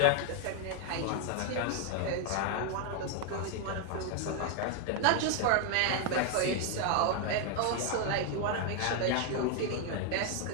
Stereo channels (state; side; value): different; both; correlation 0.00